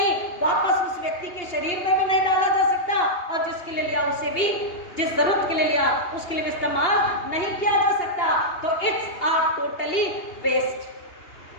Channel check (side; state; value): right; late; 2.8 ms